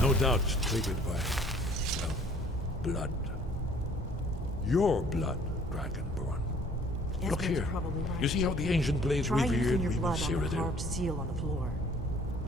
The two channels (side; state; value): both; normal; correlation 0.56